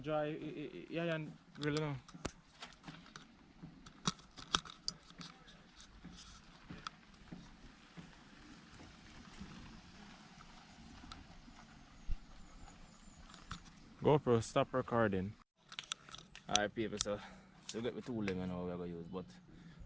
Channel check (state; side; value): identical; both; correlation 1.00